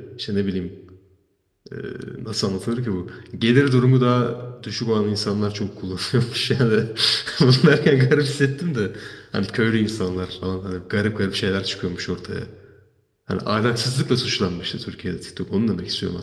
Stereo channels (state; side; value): identical; both; correlation 1.00